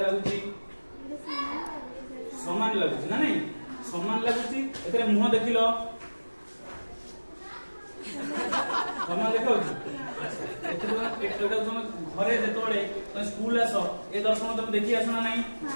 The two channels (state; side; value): inverted; both; correlation -1.00